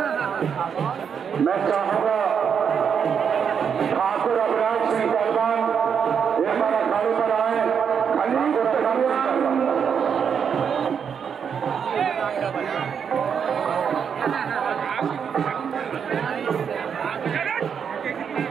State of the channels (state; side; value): quieter; left; 7.2 dB